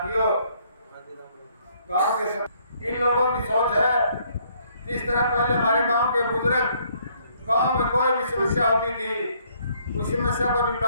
गांव के इन लोगों की सोच है जिस तरह पहले हमारे गांव के बुजुर्ग गांव में कोई भी समस्या होती थी, उस समस्या को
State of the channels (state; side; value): inverted; both; correlation -0.66